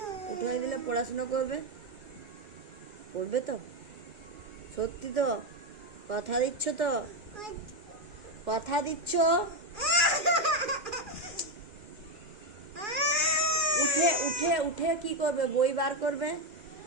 উঠে দিলে পড়াশোনা করবে? পড়বে তো? সত্যি তো? কথা দিচ্ছ তো? কথা দিচ্ছ? উঠে উঠে উঠে কি করবে? বই বার করবে?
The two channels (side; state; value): left; late; 2.4 ms